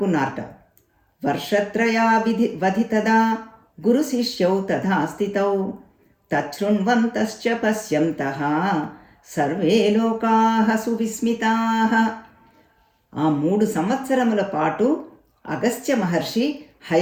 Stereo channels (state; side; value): identical; both; correlation 1.00